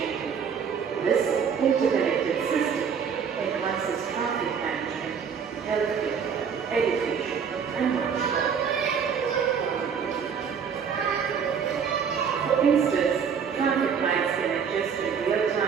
This interconnected system enhances traffic management, healthcare, education, and much more. For instance, traffic lights can adjust in real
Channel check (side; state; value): left; quieter; 6.9 dB